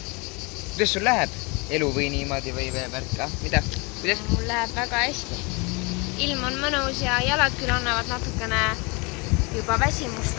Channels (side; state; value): right; quieter; 28.9 dB